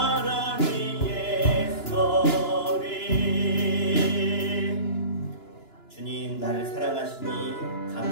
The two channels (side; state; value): right; late; 2.9 ms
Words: 위에서 주님 나를 사랑하시니